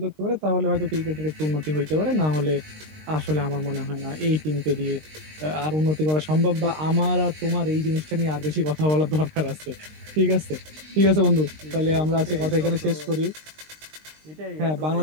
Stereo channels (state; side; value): late; left; 19 ms